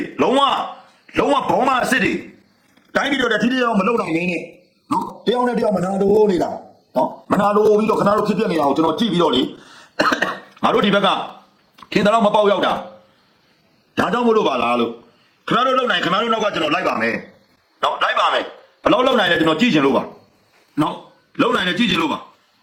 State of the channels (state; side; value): identical; both; correlation 1.00